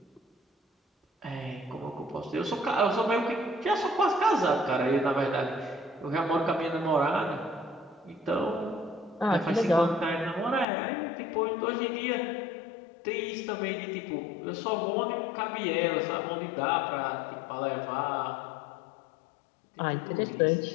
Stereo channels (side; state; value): right; drops out; at 10.7 s